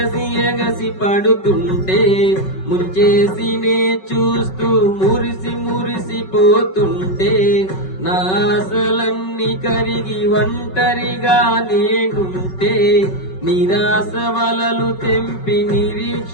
ఎగసి పడుతుంటే ముంచేసినే చూస్తూ మురిసి మురిసిపోతుంటే నా ఆశలన్నీ కరిగి ఒంటరిగా నేనుంటే నిరాశ వలలు తెంపి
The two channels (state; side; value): late; right; 5.3 ms